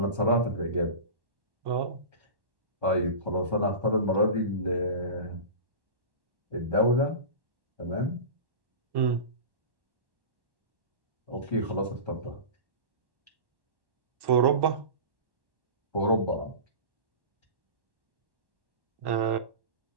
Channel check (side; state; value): left; late; 1.1 ms